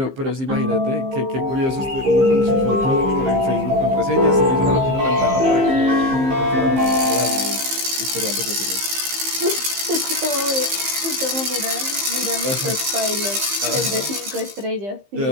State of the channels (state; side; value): late; left; 15 ms